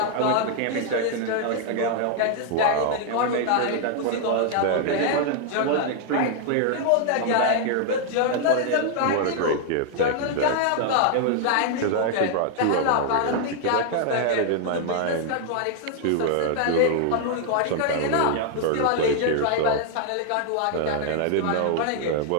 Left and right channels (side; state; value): both; different; correlation 0.00